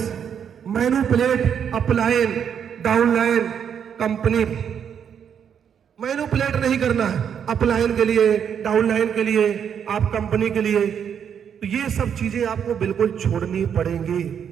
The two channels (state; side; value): quieter; left; 8.0 dB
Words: manipulate upline, downline, company. Manipulate नहीं करना है अपलाइन के लिए, डाउनलाइन के लिए, आप कंपनी के लिए। तो ये सब चीजें आपको बिल्कुल छोड़नी पड़ेंगी,